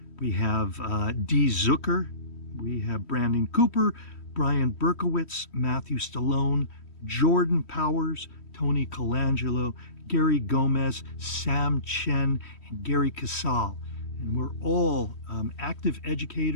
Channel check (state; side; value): late; right; 3.1 ms